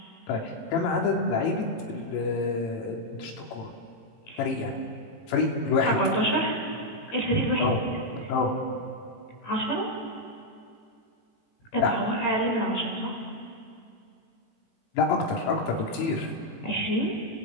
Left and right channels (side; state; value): right; late; 18 ms